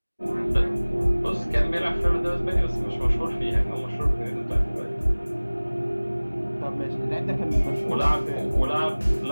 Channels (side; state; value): both; inverted; correlation -1.00